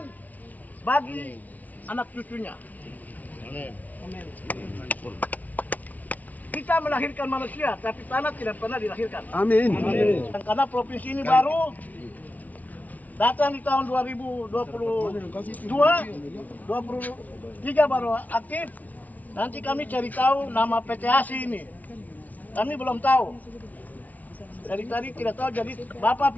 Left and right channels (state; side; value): late; right; 0.074 ms